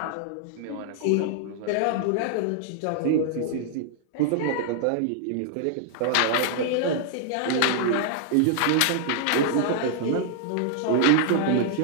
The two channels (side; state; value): both; different; correlation -0.01